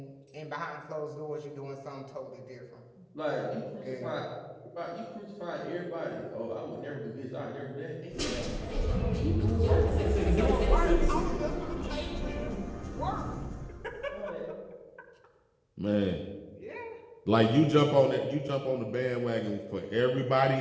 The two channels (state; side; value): identical; both; correlation 1.00